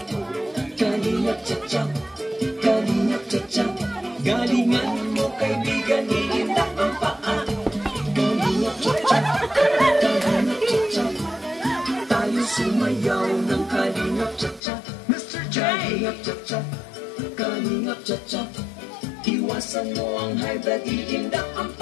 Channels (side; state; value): right; drops out; at 14.6 s